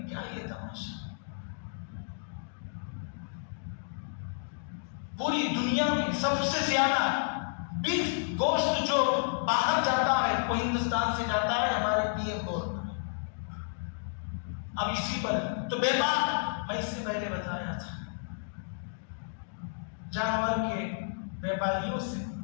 کیا یہ تماشا؟ پوری دنیا میں سب سے زیادہ بیف گوشت جو باہر جاتا ہے وہ ہندوستان سے جاتا ہے ہمارے پی ایم بورڈ میں۔ اب اسی پر تو بے بات میں اس سے پہلے بتایا تھا جانور کے بیپاریوں سے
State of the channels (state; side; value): silent; right; digital silence